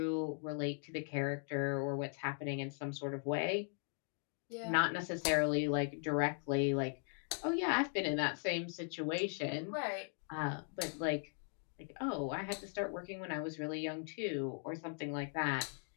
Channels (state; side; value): silent; right; 52 dB below the other